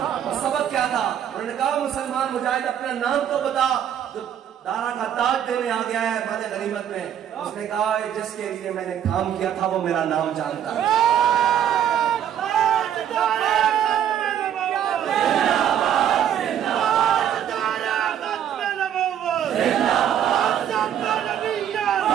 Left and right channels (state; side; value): quieter; left; 9.8 dB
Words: तो सबक क्या था? उन्होंने कहा मुसलमान मुजाहिद अपना नाम तो बता, जो दारा का ताज देने आ गया है माले गनीमत में। उसने कहा जिसके लिए मैंने काम किया था वो मेरा नाम जानता है।